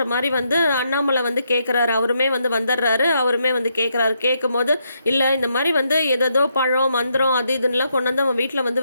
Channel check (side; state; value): both; inverted; correlation -0.78